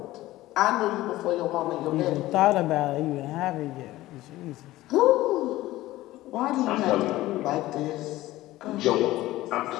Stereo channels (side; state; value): right; quieter; 16.7 dB